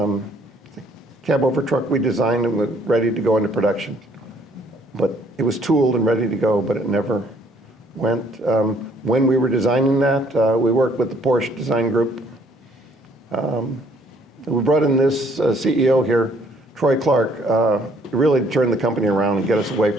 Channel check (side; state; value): both; normal; correlation 0.63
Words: cab over truck we designed and was ready to go into production, but it was tooled and ready to go, but it never went. When we were designing that, we worked with the Porsche design group. We brought in this CEO here, Troy Clark, really turned the company around and get us away